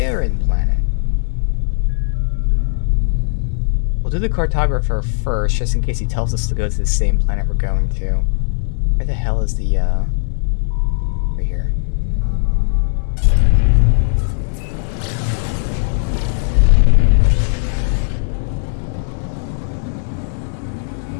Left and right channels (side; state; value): right; silent; digital silence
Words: planet. We'll do the cartographer first, just in case he tells us to go to the same planet we're going to. Where the hell is the, over here.